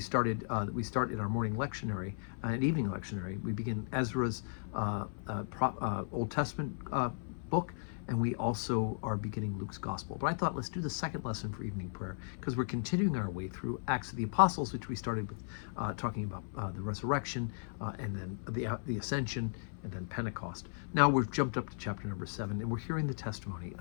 started. We start in our morning lectionary and evening lectionary. We begin Ezra's Old Testament book, and we also are beginning Luke's Gospel. But I thought, let's do the second lesson for evening prayer, because we're continuing our way through Acts of the Apostles, which we started with talking about the resurrection, and then the ascension, and then Pentecost. Now we've jumped up to chapter number 7, and we're hearing the testimony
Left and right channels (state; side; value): silent; right; 54 dB below the other